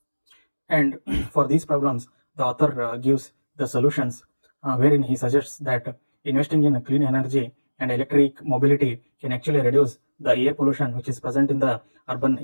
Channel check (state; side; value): inverted; both; correlation -1.00